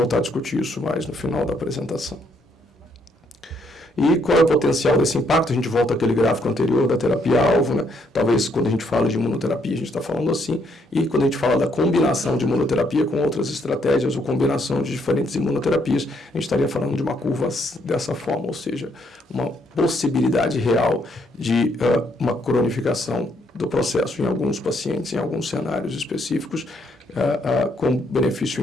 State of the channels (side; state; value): both; normal; correlation 0.72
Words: a discutir isso mais no final da apresentação. E qual é o potencial desse impacto? A gente volta àquele gráfico anterior da terapia-alvo, né? Talvez quando a gente fala de imunoterapia, a gente está falando assim, e quando a gente fala da combinação de imunoterapia com outras estratégias ou combinação de diferentes imunoterapias, a gente estaria falando de uma curva dessa forma, ou seja, uma possibilidade real de uma cronificação do processo em alguns pacientes, em alguns cenários específicos, com benefício